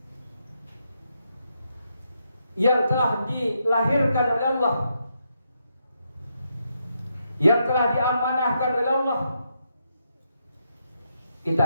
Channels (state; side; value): inverted; both; correlation -0.80